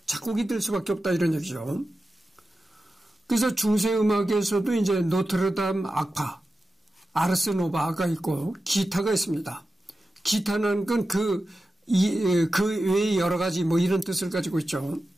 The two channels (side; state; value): both; normal; correlation 0.93